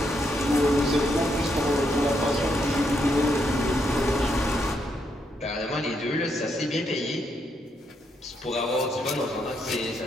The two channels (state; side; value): normal; both; correlation 0.78